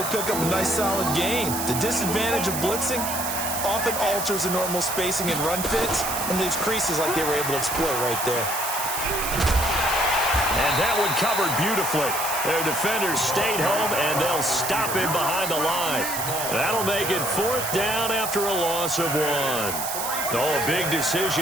pick up a nice solid gain. The disadvantage of blitzing often alters the normal spacing and run fits and leaves creases like they were able to exploit right there. And that one covered beautifully. Their defenders stayed home, and they'll stop him behind the line. That'll make it 4th down after a loss of 1. Oh, a big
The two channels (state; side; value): noise; right; hiss, 4 dB below the sound